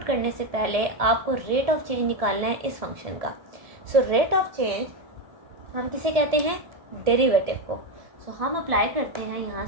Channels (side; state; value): left; late; 1.7 ms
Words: करने से पहले आपको रेट ऑफ चेंज निकालना है इस फंक्शन का। सो रेट ऑफ चेंज हम किसे कहते हैं, डेरिवेटिव को। सो हम अप्लाई करते हैं, यहाँ